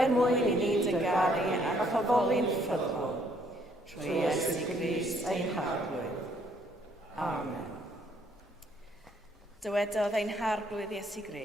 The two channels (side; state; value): both; normal; correlation 0.66